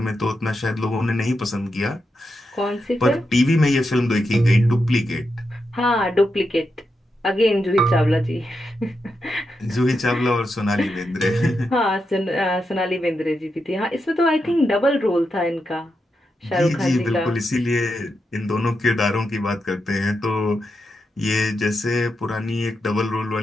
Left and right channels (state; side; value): normal; both; correlation 0.86